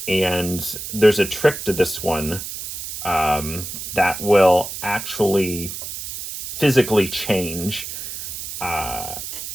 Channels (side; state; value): right; noise; hiss, 8 dB below the sound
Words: And there's a trick to this one that will actually physically change